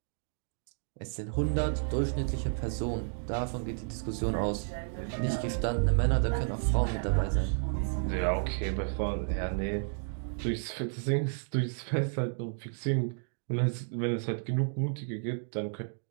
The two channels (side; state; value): left; silent; digital silence